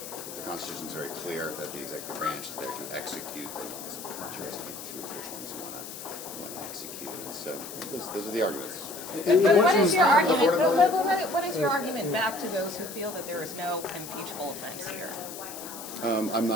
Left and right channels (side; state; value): left; noise; hiss, 11 dB below the sound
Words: Constitution is very clear that the executive branch is there to execute the laws. Choose which ones you want to execute. And so those are the arguments. But what is your argument? What is your argument back to those who feel that there is no impeachable offense here? I'm